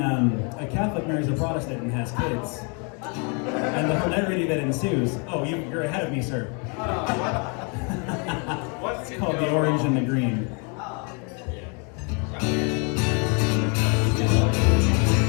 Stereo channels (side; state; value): right; quieter; 35.7 dB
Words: Catholic marries a Protestant and has kids. And the hilarity that ensues. Oh, you're ahead of me, sir. It's called The Orange and the Green.